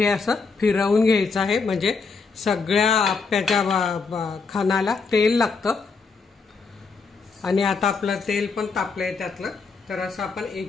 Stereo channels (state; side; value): quieter; right; 4.8 dB